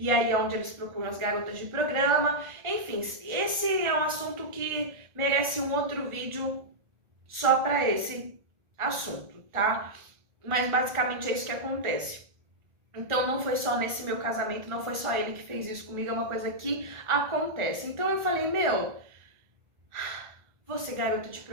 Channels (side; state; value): left; late; 1.4 ms